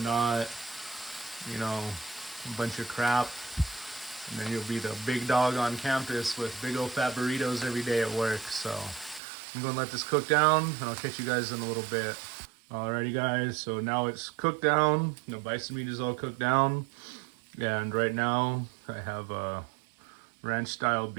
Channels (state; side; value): drops out; left; at 9.2 s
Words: not, you know, a bunch of crap. And then you'll be the big dog on campus with big old fat burritos every day at work. So I'm going to let this cook down, and I'll catch you guys in a little bit. Alrighty guys, so now it's cooked down. You know, bison meat is all cooked down. And right now I have ranch style